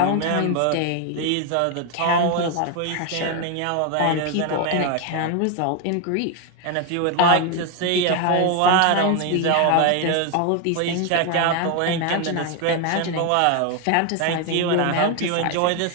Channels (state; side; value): different; both; correlation 0.01